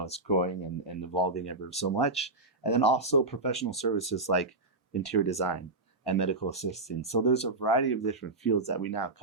growing and evolving ever so much. And then also professional services like interior design and medical assistance. So there's a variety of different fields that we now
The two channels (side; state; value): left; quieter; 3.0 dB